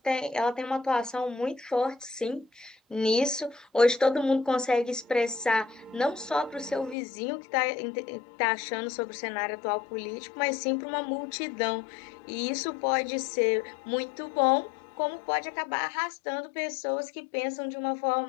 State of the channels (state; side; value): drops out; right; at 7.0 s